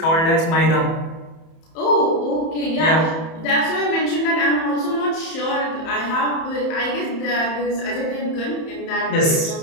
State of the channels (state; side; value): late; right; 31 ms